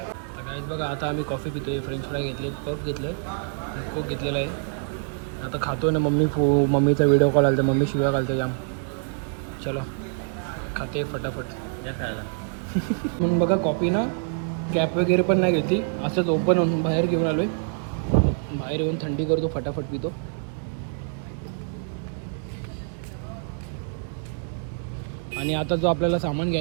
तर गाईज बघा, आता आम्ही कॉफी पितो आहे, फ्रेंच फ्राय घेतले, पफ घेतले, कोक घेतलेला आहे. आता खातो ना. मम्मीचा व्हिडिओ कॉल आला तर मम्मी शिव्या घालते जाम. चलो खाते फटाफट या खायला. म्हणून बघा कॉफी ना कॅप वगैरे पण नाही घेतली, असंच ओपन होऊन बाहेर घेऊन आलो आहे. बाहेर येऊन थंडी करतो, फटाफट पितो. आणि आता जो आपल्याला सामान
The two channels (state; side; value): silent; left; 61 dB below the other